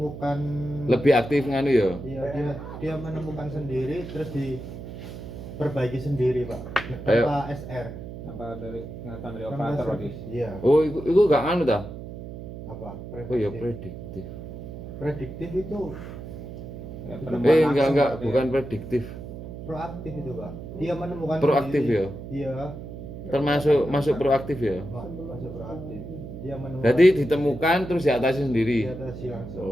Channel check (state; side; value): noise; right; hum, 11 dB below the sound